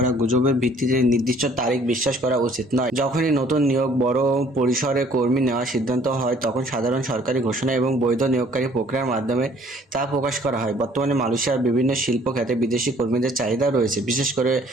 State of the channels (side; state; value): both; normal; correlation 0.58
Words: গুজবের ভিত্তিতে নির্দিষ্ট তারিখ বিশ্বাস করা উচিত নয়। যখনই নতুন নিয়োগ বড় পরিসরে কর্মী নেওয়ার সিদ্ধান্ত হয়, তখন সাধারণ সরকারি ঘোষণা এবং বৈধ নিয়োগকারী প্রক্রিয়ার মাধ্যমে তা প্রকাশ করা হয়। বর্তমানে মালয়েশিয়ার বিভিন্ন শিল্প খাতে বিদেশি কর্মীদের চাহিদা রয়েছে, বিশেষ করে